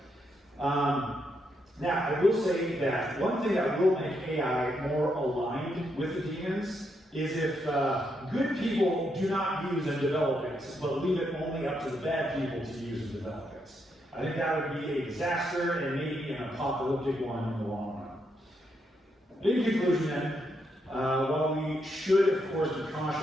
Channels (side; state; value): both; normal; correlation 0.79